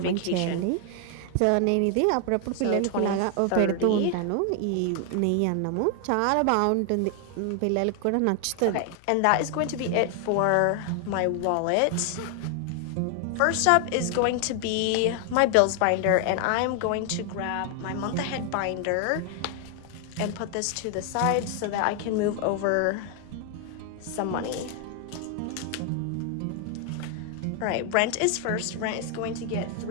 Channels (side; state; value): both; different; correlation 0.00